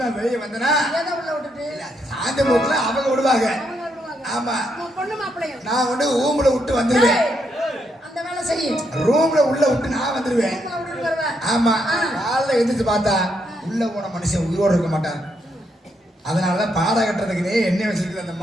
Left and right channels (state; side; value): normal; both; correlation 0.78